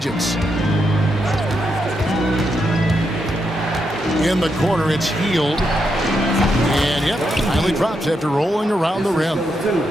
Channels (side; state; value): both; normal; correlation 0.82